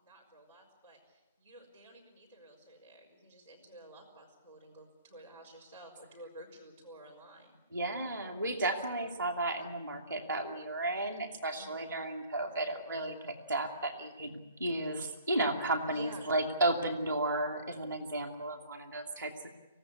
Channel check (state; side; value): inverted; both; correlation -0.51